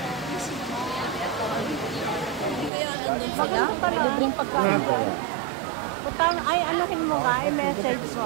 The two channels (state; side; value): drops out; left; at 2.7 s